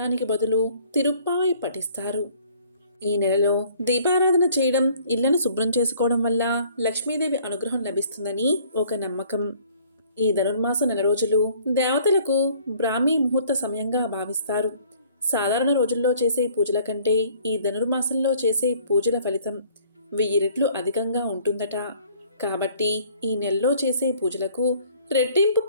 బదులు తిరుప్పావై పఠిస్తారు. ఈ నెలలో దీపారాధన చేయడం, ఇళ్లను శుభ్రం చేసుకోవడం వల్ల లక్ష్మీదేవి అనుగ్రహం లభిస్తుందని ఒక నమ్మకం. ఈ ధనుర్మాస నెల రోజులు దేవతలకు బ్రాహ్మీ ముహూర్త సమయంగా భావిస్తారు. సాధారణ రోజుల్లో చేసే పూజల కంటే ఈ ధనుర్మాసంలో చేసే పూజల ఫలితం 1000 రెట్లు అధికంగా ఉంటుందట. కాబట్టి ఈ నెలలో చేసే పూజలకు రెట్టింపు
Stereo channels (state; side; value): inverted; both; correlation -0.57